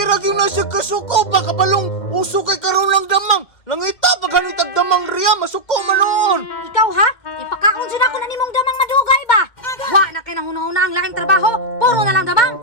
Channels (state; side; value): late; right; 2.1 ms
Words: ra gyud na siya kasuko ba kabalong uso kay karon lang damang. Langita pa ganitag damang riya masuko man noon. Ikaw ha? Ipakaon siya ako na nimong damang madugay ba? Wa na kay na una-una ang laing trabaho. Puro na lang damang.